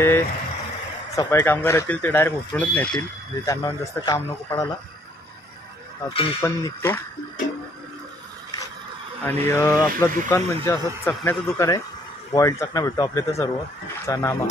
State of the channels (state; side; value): normal; both; correlation 0.64